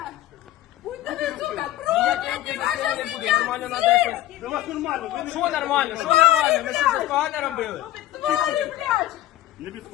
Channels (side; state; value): right; quieter; 14.2 dB